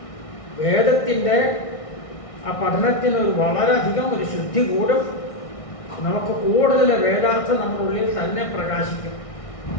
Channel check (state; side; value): late; right; 1.6 ms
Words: വേദത്തിൻ്റെ ആ പഠനത്തിന് വളരെയധികം ഒരു ശുദ്ധി കൂടും. നമുക്ക് കൂടുതൽ വേദാർത്ഥം നമ്മുടെ ഉള്ളിൽ തന്നെ പ്രകാശിക്കും.